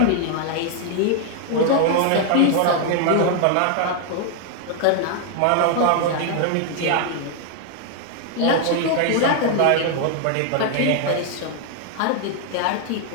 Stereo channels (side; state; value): both; different; correlation 0.00